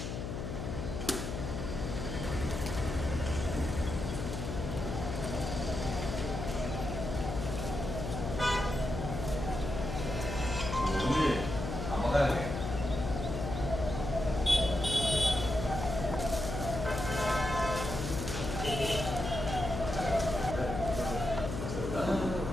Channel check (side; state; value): left; noise; hum, 4 dB below the sound